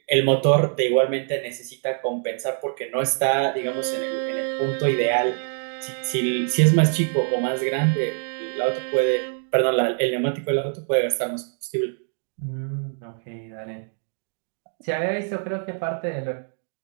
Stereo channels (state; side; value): silent; left; 57 dB below the other